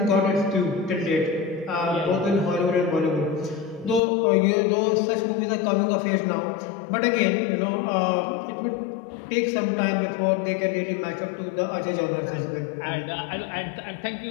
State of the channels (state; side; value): drops out; right; at 4.0 s